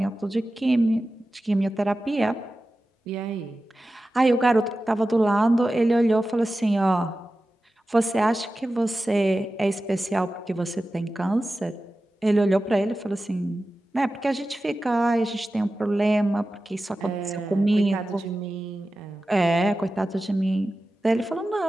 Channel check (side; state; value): both; normal; correlation 0.94